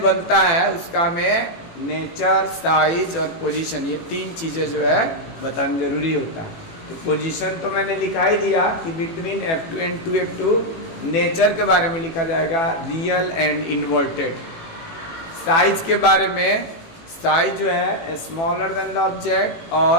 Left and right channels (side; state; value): right; late; 18 ms